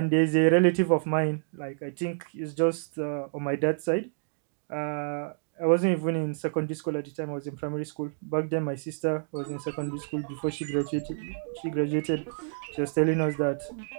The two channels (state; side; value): silent; left; digital silence